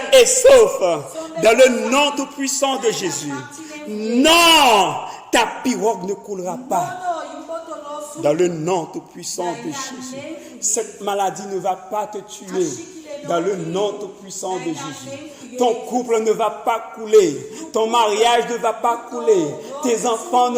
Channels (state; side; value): identical; both; correlation 1.00